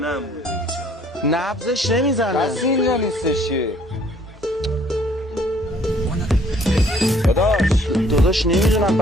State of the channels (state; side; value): normal; both; correlation 0.60